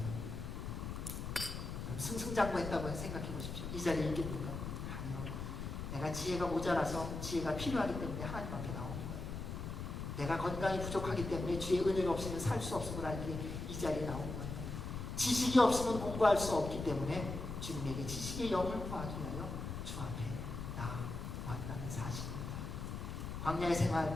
승승장구했다고 생각해 보십시오. 이 자리에 있겠습니까? 아니요. 내가 지혜가 모자라서 지혜가 필요하기 때문에 하나님 앞에 나오는 거예요. 내가 건강이 부족하기 때문에 주의 은혜가 없으면 살 수 없음을 알기에 이 자리에 나온 거예요. 지식이 없으면 공부할 수 없기 때문에 주님에게 지식의 영을 구하기 위하여 주 앞에 나왔다는 사실입니다. 광야의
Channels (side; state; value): left; noise; rumble, 5 dB below the sound